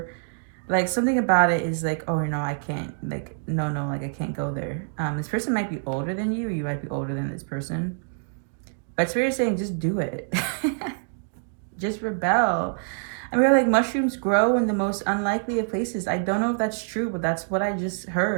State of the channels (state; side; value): silent; left; digital silence